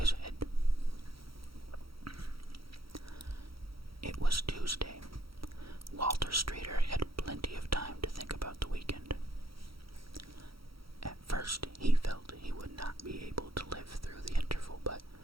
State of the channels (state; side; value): late; left; 0.75 ms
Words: head. It was Tuesday. Walter Streeter had plenty of time to think about the weekend. At first, he felt he would not be able to live through the interval, but,